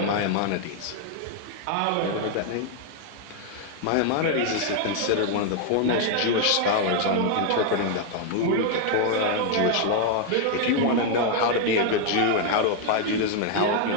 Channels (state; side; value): different; both; correlation 0.00